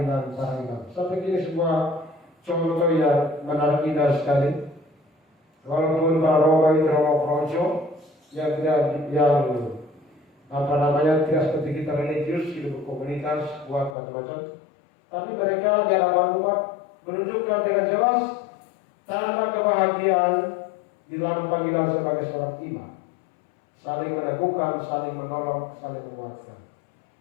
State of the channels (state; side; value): drops out; right; at 14.0 s